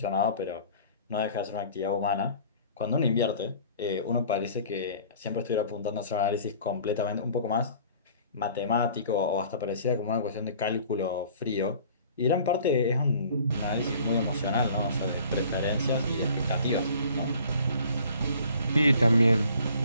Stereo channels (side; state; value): both; inverted; correlation -0.50